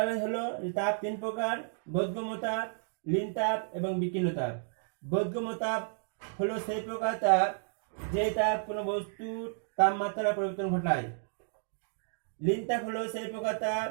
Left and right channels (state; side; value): silent; left; digital silence